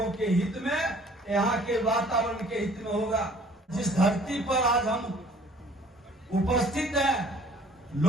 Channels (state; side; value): normal; both; correlation 0.54